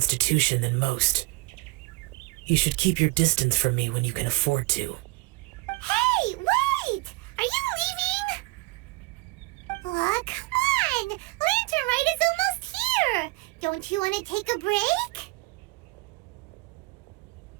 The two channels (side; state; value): left; quieter; 23.2 dB